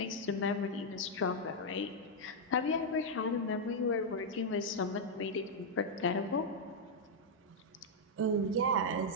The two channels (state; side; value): normal; both; correlation -0.03